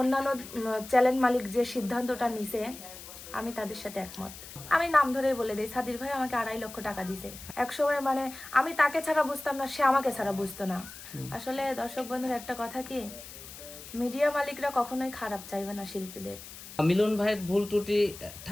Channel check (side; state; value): left; noise; hiss, 14 dB below the sound